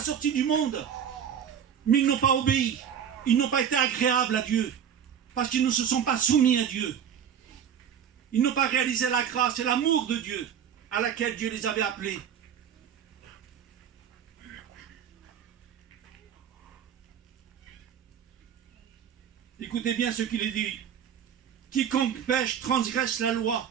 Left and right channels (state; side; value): quieter; left; 8.5 dB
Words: sortis du monde. Mais ils n'ont pas obéi, ils n'ont pas été agréables à Dieu, parce qu'ils ne se sont pas soumis à Dieu. Ils n'ont pas réalisé la grâce et l'amour de Dieu à laquelle Dieu les avait appelés. Écoutez bien ce qu'il est dit. Quiconque pêche transgresse la loi,